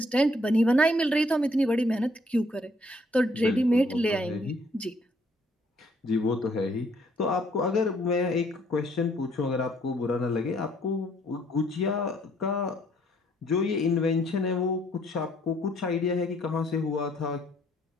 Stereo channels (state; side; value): normal; both; correlation 0.65